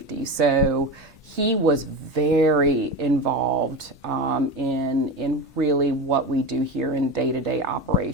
So he was very involved in really what we do here in day-to-day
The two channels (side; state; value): both; normal; correlation 0.24